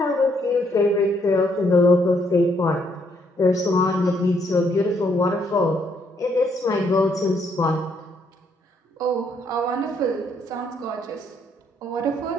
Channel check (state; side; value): normal; both; correlation 0.71